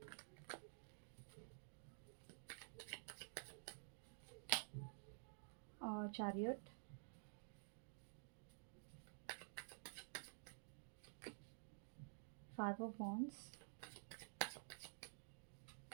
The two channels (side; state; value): left; silent; digital silence